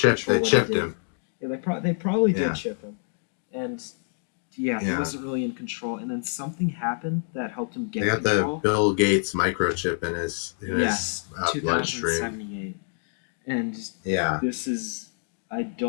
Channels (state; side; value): silent; right; digital silence